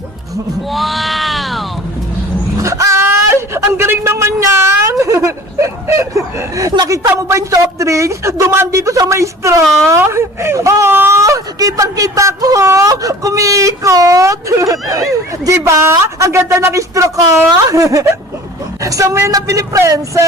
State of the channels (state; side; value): normal; both; correlation 0.44